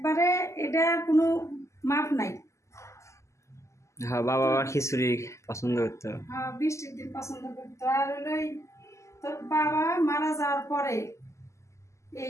এটা কোনো মাপ নাই। হ্যাঁ, বাবা আবার খিচুড়ি পছন্দ করতো। হ্যাঁ, বৃষ্টির দিন পছন্দ করতো। আর হলো তোর বাবা মারা যাওয়ার পরে এই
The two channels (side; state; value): right; late; 0.14 ms